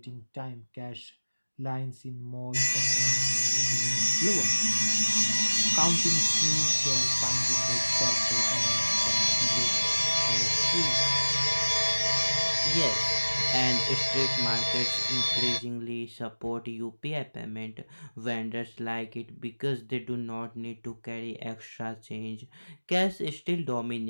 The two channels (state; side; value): inverted; both; correlation -1.00